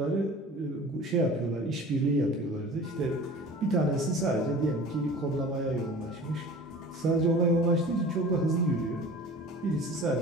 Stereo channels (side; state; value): both; normal; correlation 0.41